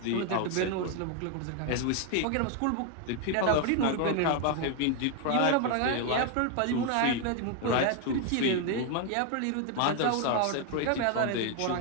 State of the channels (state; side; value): different; both; correlation 0.01